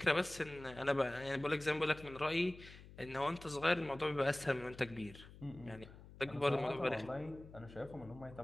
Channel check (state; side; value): noise; left; hum, 18 dB below the sound